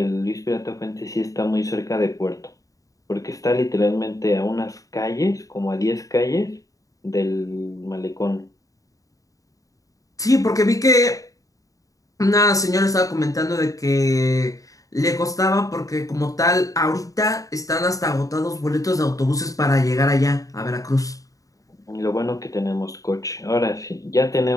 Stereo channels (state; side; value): late; right; 0.16 ms